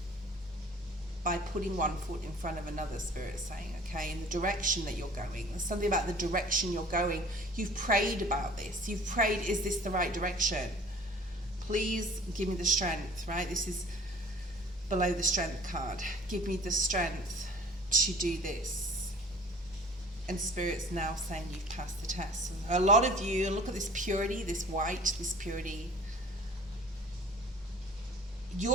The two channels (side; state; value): both; normal; correlation 0.48